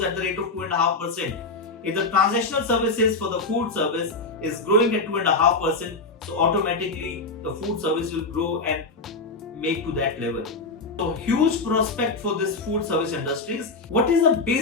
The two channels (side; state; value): right; quieter; 3.6 dB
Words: at the rate of 2.5%. If the transactional services for the food service is growing at 2.5%, so automatically the food service will grow and make to that level. So huge prospect for this food service industries. What is the